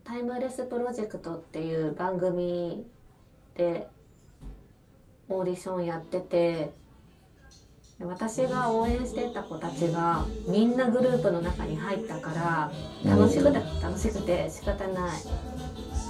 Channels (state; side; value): identical; both; correlation 1.00